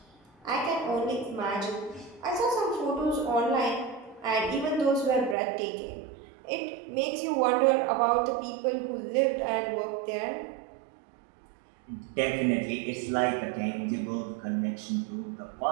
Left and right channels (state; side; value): drops out; left; at 5.4 s